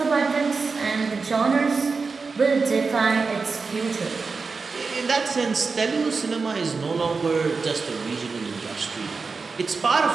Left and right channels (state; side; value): quieter; left; 4.5 dB